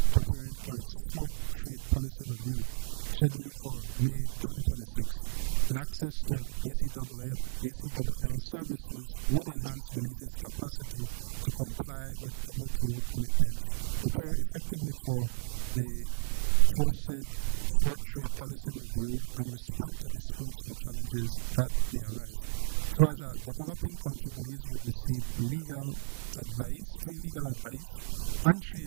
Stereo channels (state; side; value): silent; left; digital silence